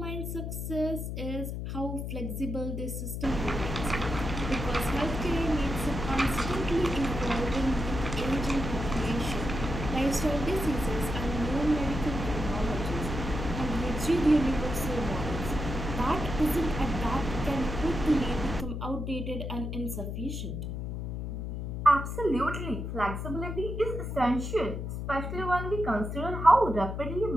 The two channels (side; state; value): left; noise; hum, 4 dB below the sound